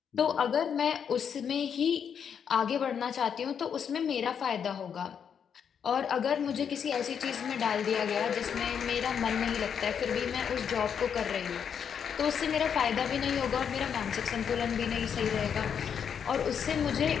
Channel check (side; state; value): right; quieter; 7.6 dB